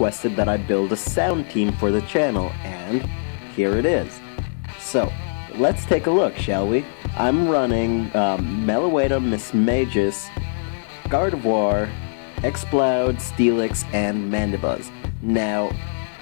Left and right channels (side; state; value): right; silent; digital silence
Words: that I build a sound team for the channel, and here it is. So let's take a look, shall we? I'm running Meloetta, Miss Magus, Gardevoir, Exploud, Steelix, and Mandibuzz. Now,